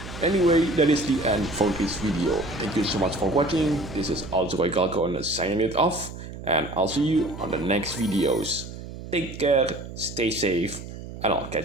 Anyway, that is the end for this video. Thank you so much for watching. This is Alzroy Galcon signing it off, and I'll see you on the next videos. Take care, stay safe, and I'll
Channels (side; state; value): right; noise; hum, 12 dB below the sound